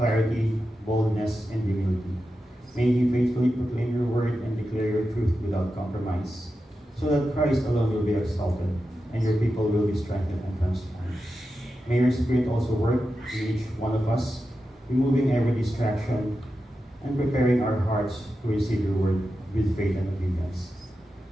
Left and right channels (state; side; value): normal; both; correlation 0.90